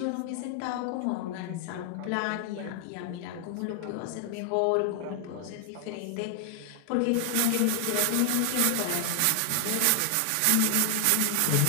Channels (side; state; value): both; different; correlation 0.00